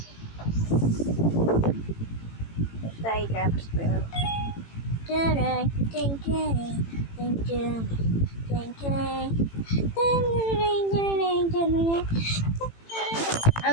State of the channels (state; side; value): late; right; 18 ms